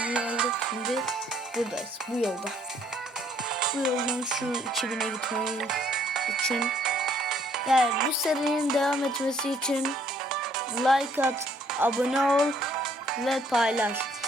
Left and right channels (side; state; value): both; normal; correlation 0.65